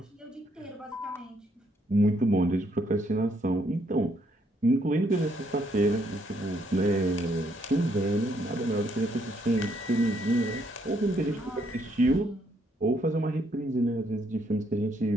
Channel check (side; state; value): both; normal; correlation 0.72